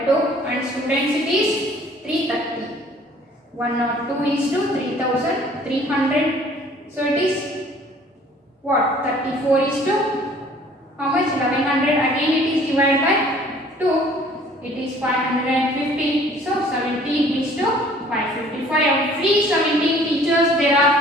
and students it is 330. 102 is to 3,300. So it is what? 34 is to how much? 1100. Again it is divided by 2. It is 550. So 17 is to 555. Every 17 teachers there are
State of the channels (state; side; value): normal; both; correlation 0.54